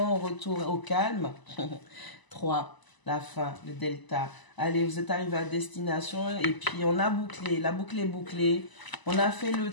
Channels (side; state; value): right; late; 1.0 ms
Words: retour au calme. 3, la fin, le delta. Allez, vous êtes arrivé à destination et puis on a bouclé, la boucle est bouclée. On a fait le